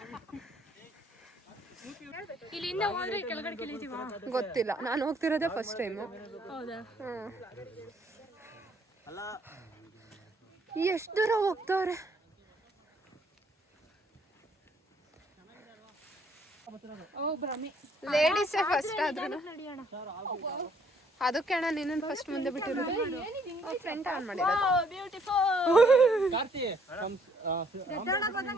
ಇಲ್ಲಿಂದ ಹೋದ್ರೆ ಕೆಳಗಡೆ ಕೆಳಿತೀವ? ಗೊತ್ತಿಲ್ಲ, ನಾನು ಹೋಗ್ತಿರೋದೇ ಫಸ್ಟ್ ಟೈಮು. ಹೌದಾ? ಎಷ್ಟು ದೂರ ಹೋಗ್ತವ್ರೆ. ಲೇಡೀಸೇ ಫಸ್ಟ್ ಆದ್ರೂ ಅದಕ್ಕೆ ಅಣ್ಣ ನಿನ್ನ ಫಸ್ಟ್ ಮುಂದೆ ಬಿಟ್ಟಿರೋದು. ಫ್ರೆಂಡ್ ಆನ್ ಮಾಡಿರೋದು.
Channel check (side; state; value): both; normal; correlation 0.65